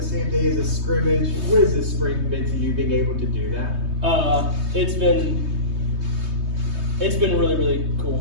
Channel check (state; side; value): late; left; 3.2 ms